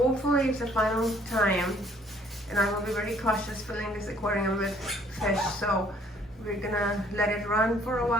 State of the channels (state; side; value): normal; both; correlation 0.61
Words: it's the final time, and I will be very cautious filling this aquarium with fish. So we're gonna let it run for a